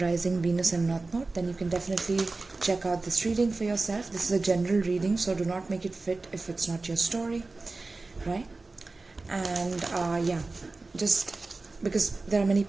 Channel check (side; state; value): left; quieter; 3.5 dB